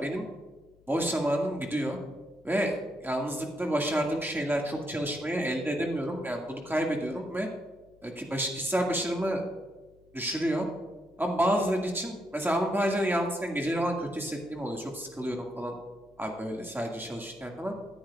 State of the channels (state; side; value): noise; left; hum, 29 dB below the sound